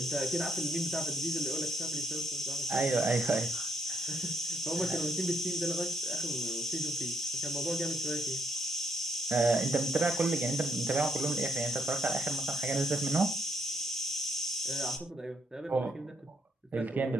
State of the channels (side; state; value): both; normal; correlation 0.74